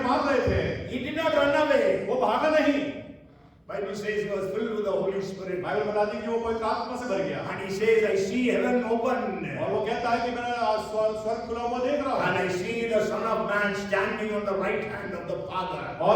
मार रहे थे, he did not run away. वो भागा नहीं। Bible says he was filled with the Holy Spirit. Bible बताती है कि वो पवित्र आत्मा से भर गया। And he says, I see heaven open. और वो कहता है कि मैं स्वर्ग खुला हुआ देख रहा हूँ। And I see the Son of Man standing on the right hand of the Father.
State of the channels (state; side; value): identical; both; correlation 1.00